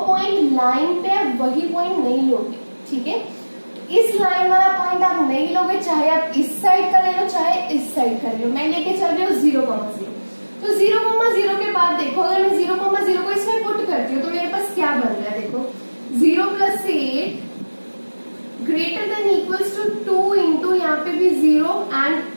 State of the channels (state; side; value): inverted; both; correlation -1.00